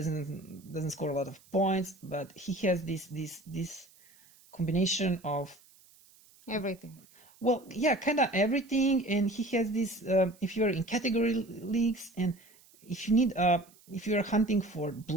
score a lot of points, but he has this combination of everything. Well, yeah, kind of everything, and he has this. If you're in category leagues, and if you need, if you're hunting for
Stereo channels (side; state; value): right; noise; hiss, 27 dB below the sound